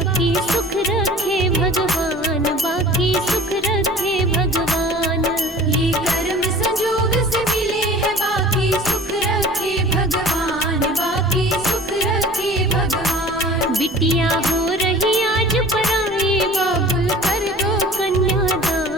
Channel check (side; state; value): both; normal; correlation 0.44